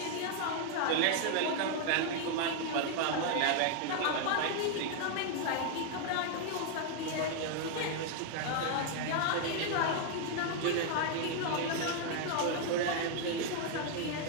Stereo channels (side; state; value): both; different; correlation 0.00